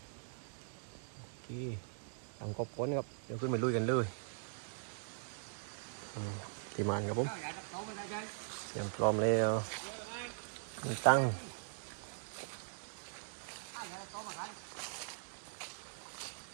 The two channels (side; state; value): left; silent; 51 dB below the other